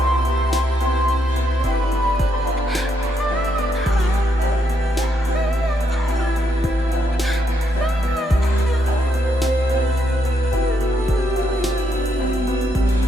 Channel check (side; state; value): both; normal; correlation 0.77